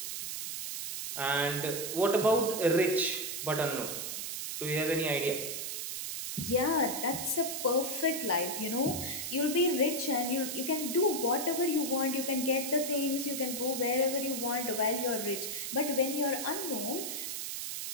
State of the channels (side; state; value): right; noise; hiss, 4 dB below the sound